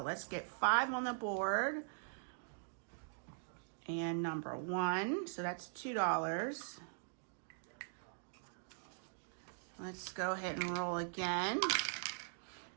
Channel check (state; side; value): silent; left; digital silence